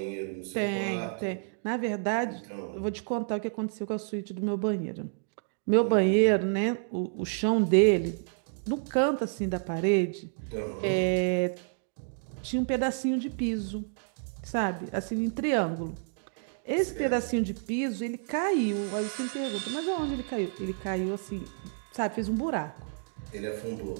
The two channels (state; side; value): silent; left; digital silence